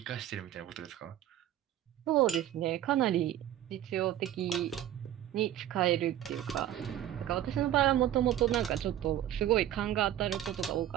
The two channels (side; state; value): left; quieter; 12.1 dB